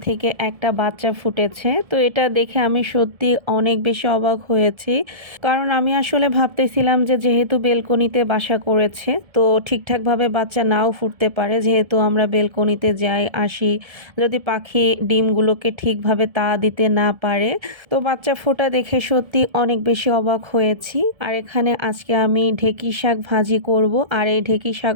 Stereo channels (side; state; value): left; late; 1.7 ms